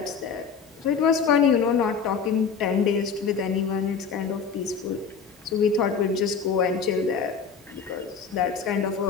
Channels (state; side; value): quieter; right; 6.0 dB